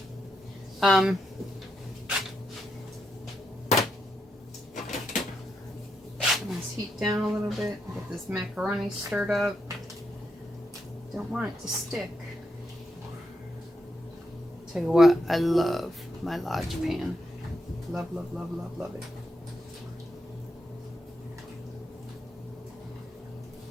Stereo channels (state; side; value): normal; both; correlation 0.82